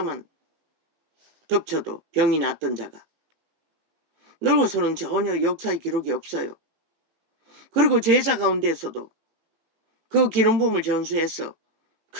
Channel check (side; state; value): left; late; 18 ms